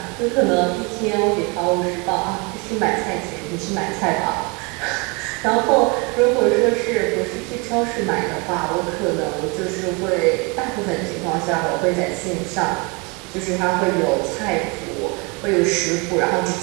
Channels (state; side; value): quieter; left; 30.2 dB